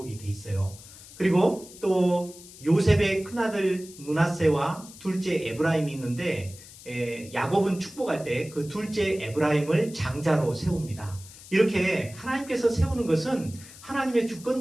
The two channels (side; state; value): left; noise; hiss, 18 dB below the sound